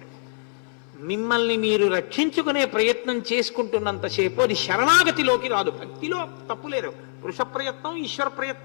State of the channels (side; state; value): right; silent; 60 dB below the other